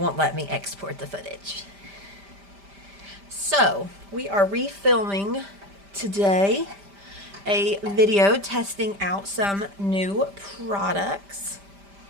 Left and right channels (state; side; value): late; left; 5.0 ms